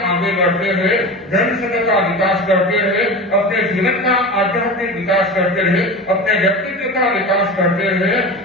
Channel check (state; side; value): normal; both; correlation 0.30